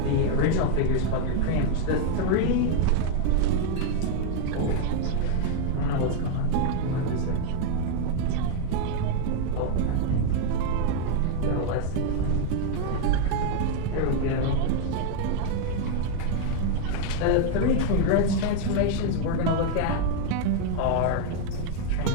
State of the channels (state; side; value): different; both; correlation 0.00